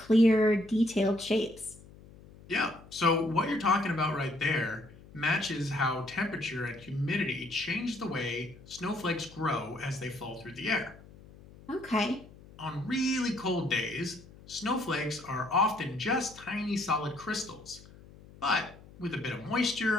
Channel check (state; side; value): noise; left; hum, 21 dB below the sound